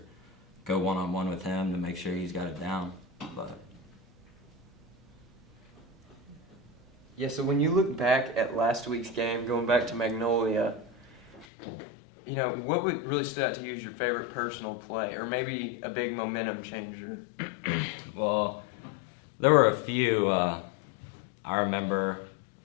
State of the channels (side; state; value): right; drops out; at 11.5 s